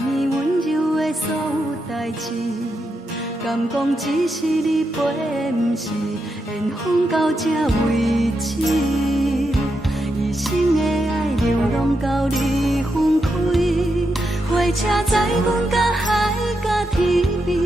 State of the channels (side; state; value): both; normal; correlation 0.84